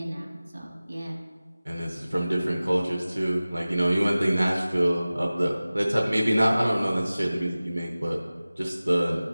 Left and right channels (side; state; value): both; inverted; correlation -0.97